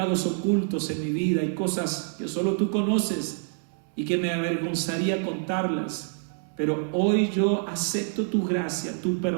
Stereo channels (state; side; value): silent; left; 58 dB below the other